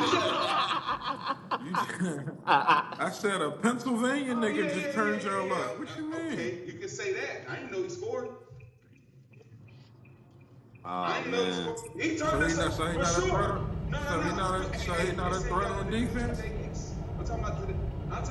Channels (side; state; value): both; identical; correlation 1.00